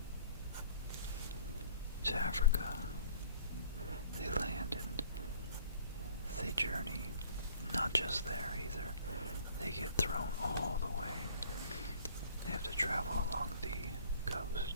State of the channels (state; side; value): inverted; both; correlation -0.53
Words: to Africa. They land and they journey, not just there either, they get thrown all the way. They have to travel along the coast